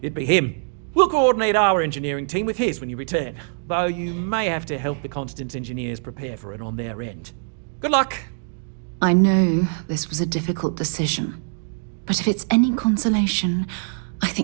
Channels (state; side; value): silent; left; digital silence